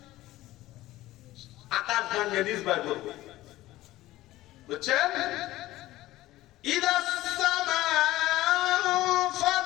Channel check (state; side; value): quieter; right; 16.5 dB